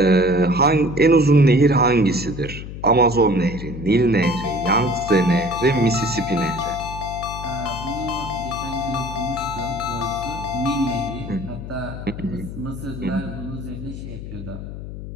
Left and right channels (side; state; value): left; noise; hum, 10 dB below the sound